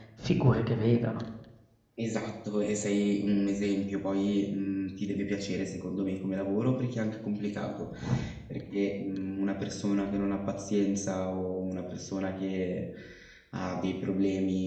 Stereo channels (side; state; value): both; identical; correlation 1.00